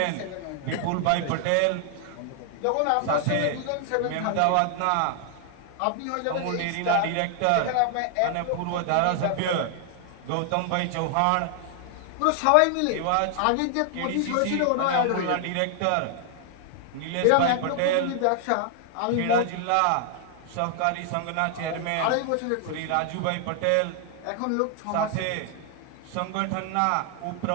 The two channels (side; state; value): both; different; correlation 0.00